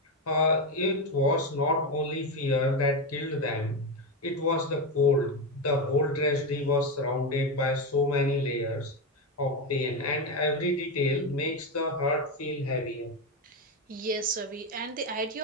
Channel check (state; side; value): normal; both; correlation 0.12